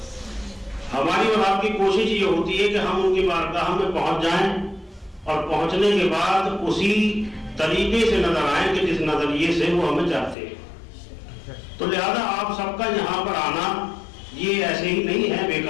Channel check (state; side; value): drops out; right; at 10.4 s